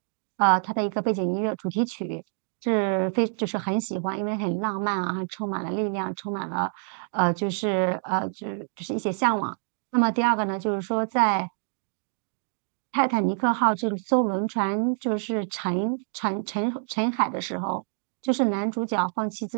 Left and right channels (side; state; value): left; silent; 60 dB below the other